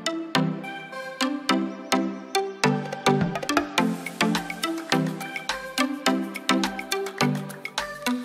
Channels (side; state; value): both; identical; correlation 1.00